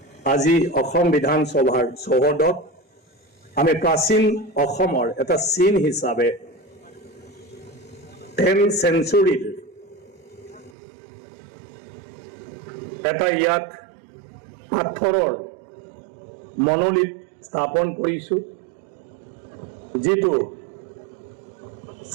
আজি অসম বিধানসভাৰ চৌহদত আমি প্ৰাচীন অসমৰ এটা চিন হিচাপে 10th centuryৰ এটা ইয়াত পাথৰৰ মনোলিথ স্থাপন কৰিছোঁ, যিটো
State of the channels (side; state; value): left; drops out; at 10.8 s